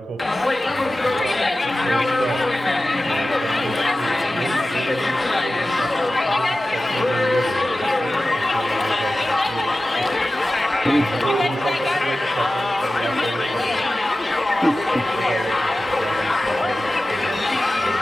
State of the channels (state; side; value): normal; both; correlation 0.95